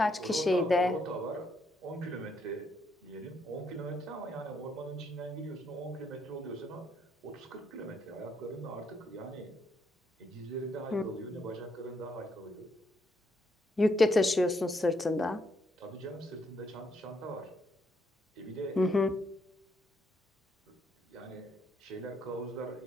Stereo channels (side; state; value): both; normal; correlation 0.74